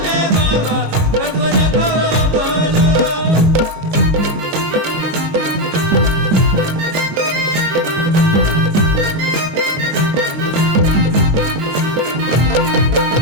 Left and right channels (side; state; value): left; late; 22 ms